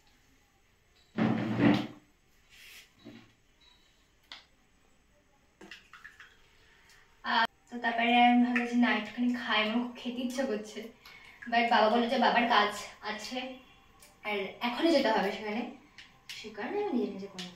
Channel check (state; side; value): identical; both; correlation 1.00